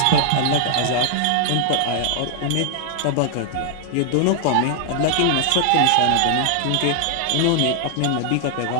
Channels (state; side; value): different; both; correlation -0.01